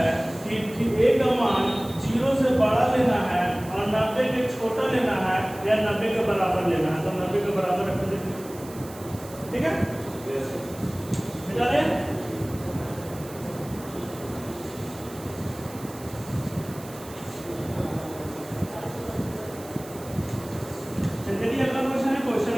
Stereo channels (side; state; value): right; noise; hiss, 18 dB below the sound